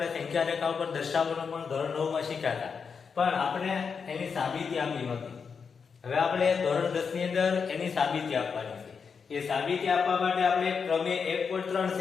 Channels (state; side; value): quieter; right; 5.9 dB